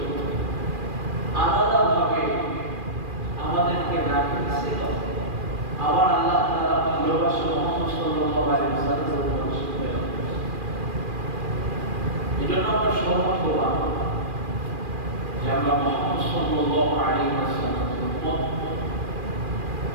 আলাদাভাবে আমাদেরকে রাখিয়েছিল। আবার আল্লাহ তাআলা ভালোবাসা মুহাম্মদ সাল্লাল্লাহু আলাইহি ওয়াসাল্লামের উপর প্রেরণ করেছেন। এজন্য আমরা সৌভাগ্যবান যে আমরা মুহাম্মদ সাল্লাল্লাহু আলাইহি ওয়াসাল্লামের উম্মত।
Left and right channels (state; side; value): late; left; 2.4 ms